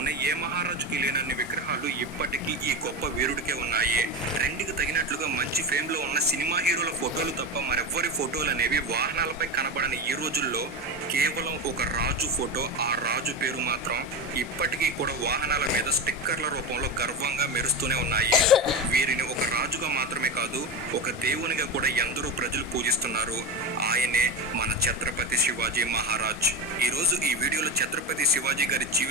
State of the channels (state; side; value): normal; both; correlation 0.20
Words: ఏ మహారాజుకి లేనన్ని విగ్రహాలు ఇప్పటికీ ఈ గొప్ప వీరుడికే ఉన్నాయి. ట్రెండ్కి తగినట్లుగా మంచి ఫేమ్ లో ఉన్న సినిమా హీరోల ఫోటోలు తప్ప మరెవ్వరి ఫోటోలు అనేవి వాహనాలపై కనబడని ఈ రోజుల్లో కేవలం ఒక రాజు ఫోటో, ఆ రాజు పేరు మాత్రం ఇప్పటికీ కూడా వాహనాల మీద స్టిక్కర్ల రూపంలో గర్వంగా మెరుస్తూనే ఉన్నాయి. వీరిని ఒక రాజుగా మాత్రమే కాదు, ఒక దేవునిగా కూడా ఎందరో ప్రజలు పూజిస్తున్నారు. ఆయనే మన ఛత్రపతి శివాజీ మహారాజ్. ఈ రోజు ఈ వీడియోలో ఛత్రపతి శివాజీ గారి